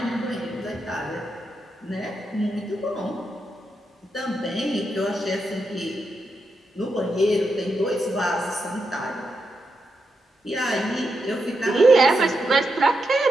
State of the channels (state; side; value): normal; both; correlation 0.85